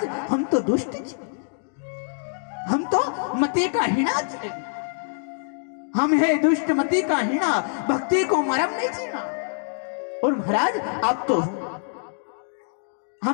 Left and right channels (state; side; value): silent; right; digital silence